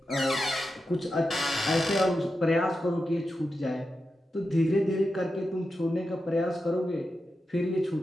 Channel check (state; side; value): normal; both; correlation 0.89